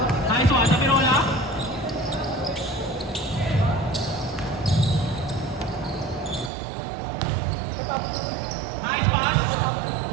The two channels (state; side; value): drops out; left; at 6.5 s